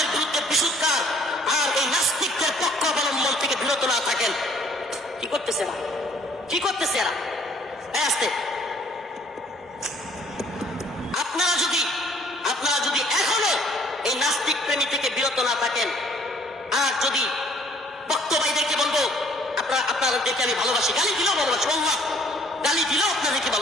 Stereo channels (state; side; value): normal; both; correlation 0.58